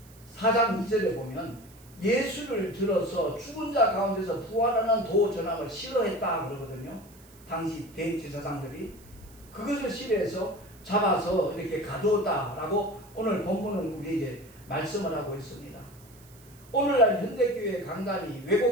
4장 2절에 보면 예수를 들어서 죽은 자 가운데서 부활하는 도 전함을 싫어했다 그러거든요. 당시 대제사장들이 그것을 싫어해서 잡아서 이렇게 가두었다라고 오늘 본문은 우리에게 말씀을 하고 있습니다. 오늘날 현대교회 강단이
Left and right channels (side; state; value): right; noise; hiss, 25 dB below the sound